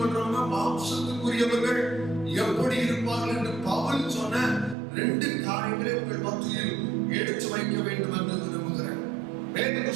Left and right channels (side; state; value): left; drops out; at 4.8 s